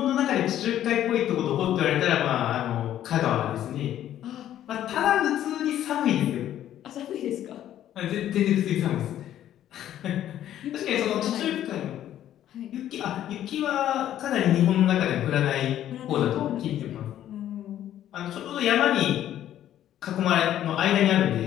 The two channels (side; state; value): right; quieter; 11.7 dB